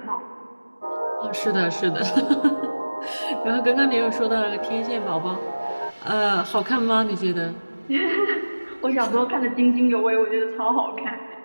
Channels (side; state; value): both; inverted; correlation -1.00